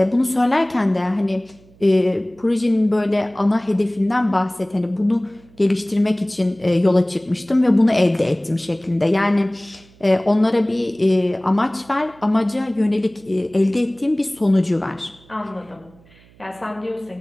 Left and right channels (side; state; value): right; noise; hum, 28 dB below the sound